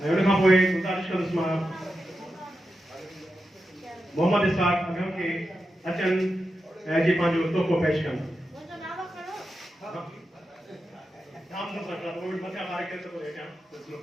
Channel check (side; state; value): both; normal; correlation 0.89